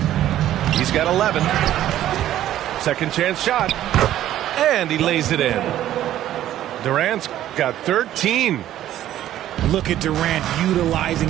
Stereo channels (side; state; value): left; quieter; 12.6 dB